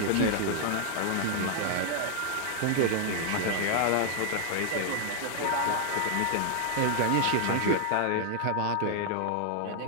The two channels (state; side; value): different; both; correlation 0.00